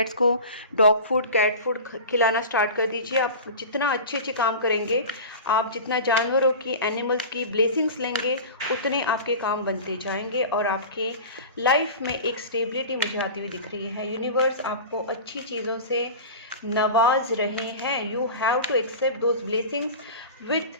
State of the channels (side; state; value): both; inverted; correlation -0.32